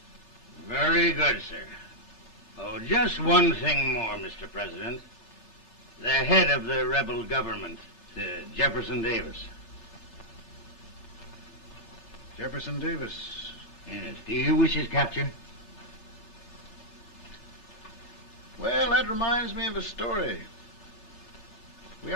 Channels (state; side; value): late; right; 3.3 ms